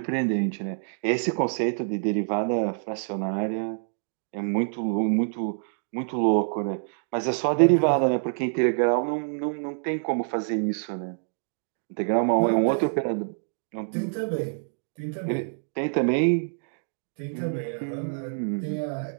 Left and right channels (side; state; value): left; silent; digital silence